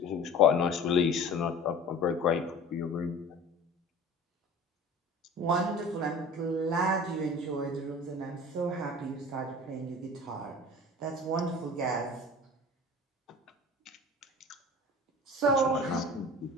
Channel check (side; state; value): both; normal; correlation 0.40